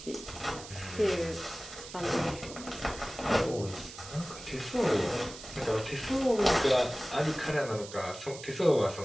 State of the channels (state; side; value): noise; right; hiss, 14 dB below the sound